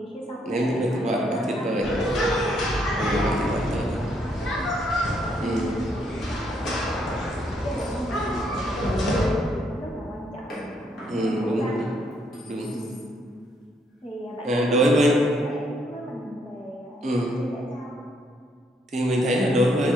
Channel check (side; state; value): both; normal; correlation 0.72